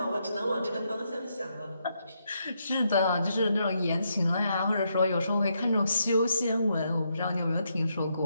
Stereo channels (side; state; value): both; inverted; correlation -0.79